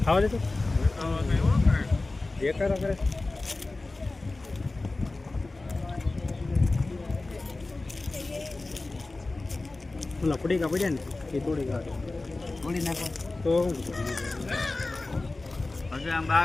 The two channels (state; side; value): quieter; right; 3.2 dB